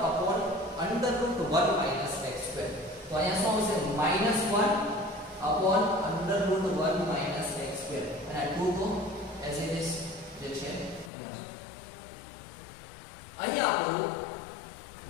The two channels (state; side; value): drops out; right; at 11.1 s